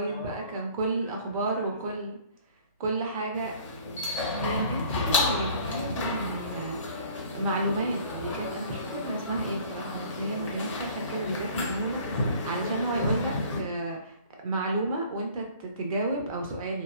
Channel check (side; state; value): both; inverted; correlation -0.51